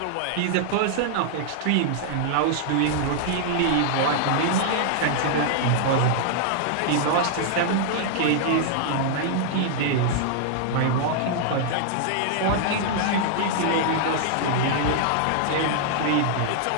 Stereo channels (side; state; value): both; different; correlation -0.01